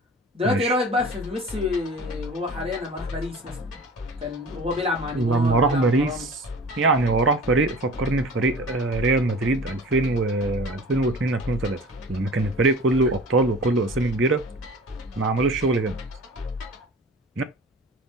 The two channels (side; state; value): both; normal; correlation 0.40